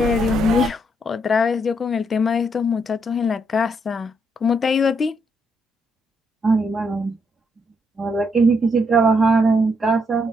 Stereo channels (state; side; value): normal; both; correlation 0.76